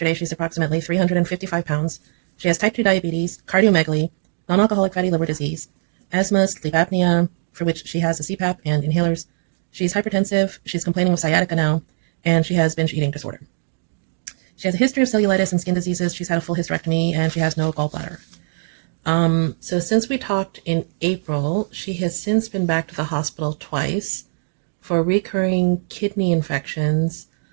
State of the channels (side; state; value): left; silent; digital silence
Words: she's approximately 355 pounds. She has type 2 diabetes, cardiomegaly, non alcoholic fatty liver disease, asthma, sleep apnea, for which she has a CPAP and inhalers. She's hypertensive, she's complaining of sciatica now, and she has binge eating disorder. She has a history of cellulitis and skin diseases. She's had a full hysterectomy, and she has no gallbladder. So since we talked in April, she has since been back to the hospital twice for recurring kidney infections